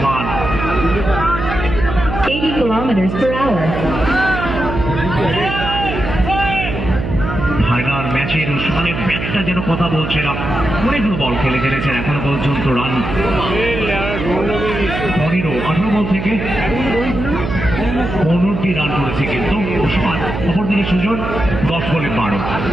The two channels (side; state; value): right; noise; hum, 5 dB below the sound